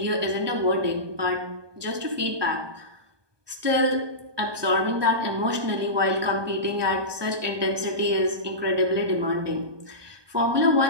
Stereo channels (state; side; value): late; left; 1.2 ms